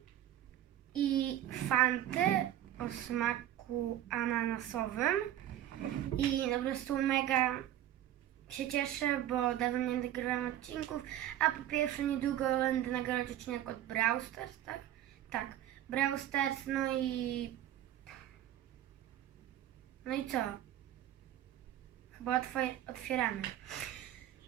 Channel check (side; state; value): left; quieter; 12.2 dB